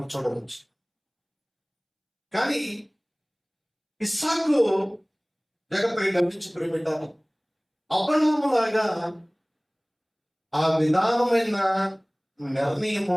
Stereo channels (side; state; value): both; identical; correlation 1.00